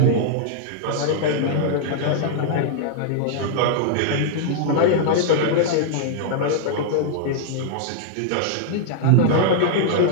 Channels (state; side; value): different; both; correlation -0.01